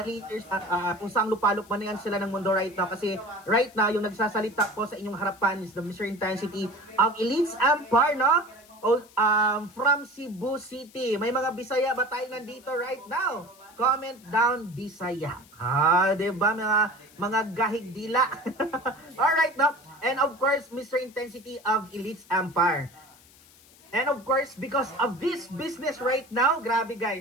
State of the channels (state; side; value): noise; left; hiss, 25 dB below the sound